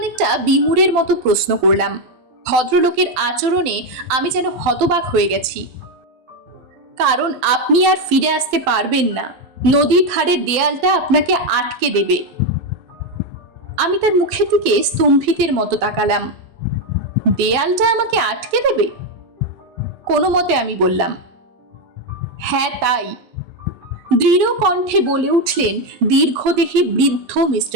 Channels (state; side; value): late; left; 12 ms